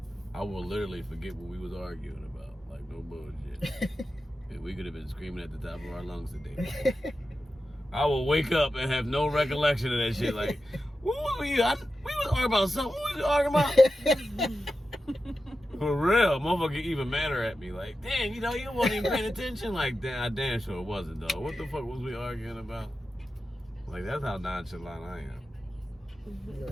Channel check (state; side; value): normal; both; correlation 0.92